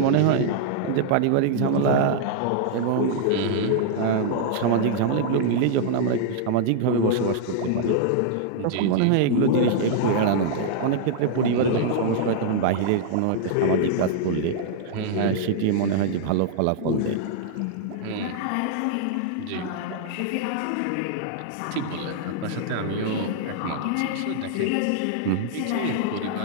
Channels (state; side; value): different; both; correlation -0.01